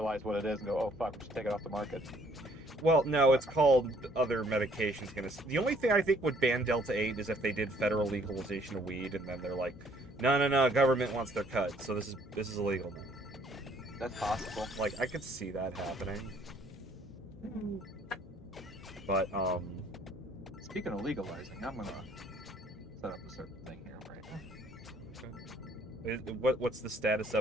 what it is and go, oh fuck, we should take it off the market. Well, no, it's called other medications. The only thing I think would ban Delta 8 is if they did federal legalization of weed, and then they're like, no, government wants their cut, so this is illegal now. That's possible. Like, I could see that happening. But, Speaking of legalizing, I'm gonna set up a certain thing here right now. what's the status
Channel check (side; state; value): both; normal; correlation 0.62